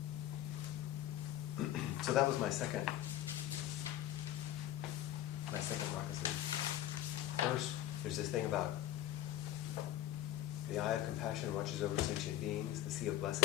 So that was my second moccasin. First, there's this thing about the eye of compassion watches over sentient beings. The sea of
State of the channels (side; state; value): right; quieter; 12.8 dB